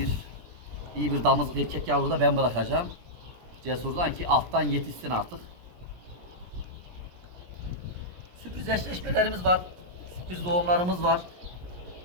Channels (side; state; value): left; late; 17 ms